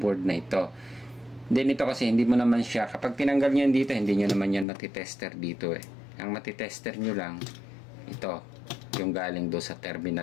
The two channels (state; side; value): drops out; right; at 4.7 s